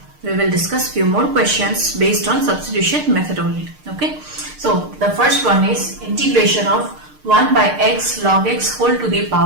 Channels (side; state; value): left; late; 6.6 ms